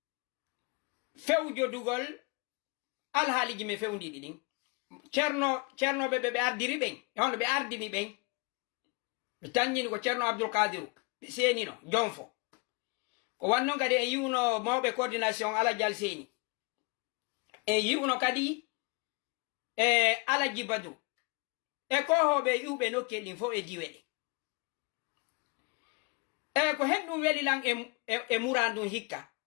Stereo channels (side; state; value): right; quieter; 29.5 dB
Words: fewjodugol alhaaliji me fewndiɗi ɗin ceernoɓe ɓe ardiri ɓen hono ɓe ardini ɓen ɓe taññini ko ceerno Abdoul Kadiru ɓe seenino jonfo ko wannon kadi en yiwno mawɓe coordination Aladial Seni en yiwno kadi e Alaji Badru e kohoɓe iwɓe nokke ɗin fof e diwe ɗe e ko hen ɗum weli lan e murandum hikka